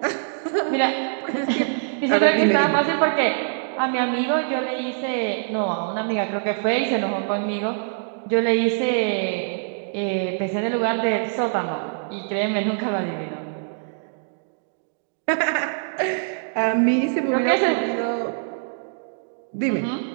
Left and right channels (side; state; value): left; silent; digital silence